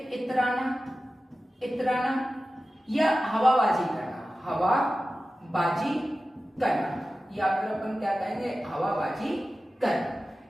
इतराना, इतराना, या हवाबाजी करना, हवाबाजी करना, या फिर अपन क्या कहेंगे, हवाबाजी करना।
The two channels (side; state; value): both; normal; correlation 0.95